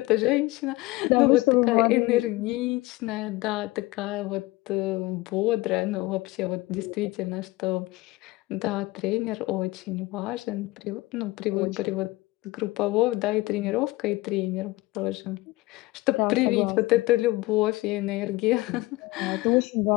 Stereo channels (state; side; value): quieter; right; 20.3 dB